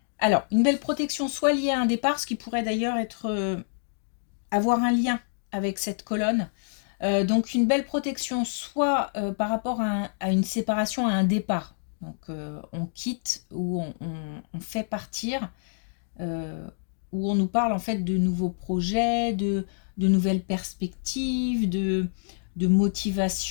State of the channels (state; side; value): silent; right; digital silence